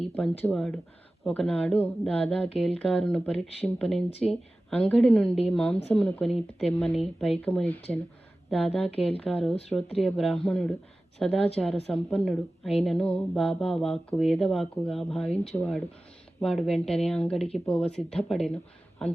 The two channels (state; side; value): normal; both; correlation 0.96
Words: పంచువాడు. ఒకనాడు దాదా కేల్కారును పరీక్షింపనించి అంగడి నుండి మాంసమును కొని తెమ్మని పైకమునిచ్చెను. దాదా కేల్కారు శ్రోత్రియ బ్రాహ్మణుడు, సదాచార సంపన్నుడు అయినను బాబా వాక్కు వేదవాక్కుగా భావించువాడు. వాడు వెంటనే అంగడికి పోవ సిద్ధపడెను.